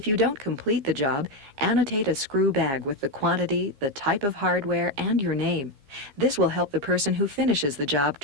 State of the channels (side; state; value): left; late; 15 ms